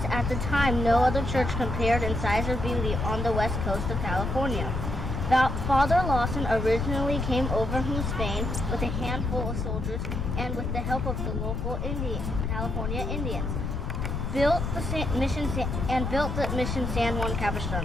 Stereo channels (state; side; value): noise; left; rumble, 2 dB below the sound